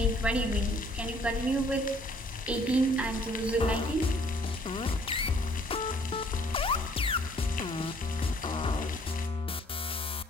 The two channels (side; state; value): both; normal; correlation 0.60